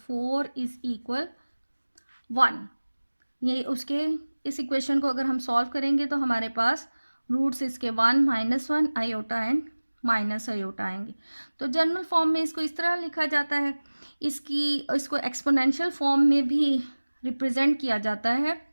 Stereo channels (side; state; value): both; inverted; correlation -1.00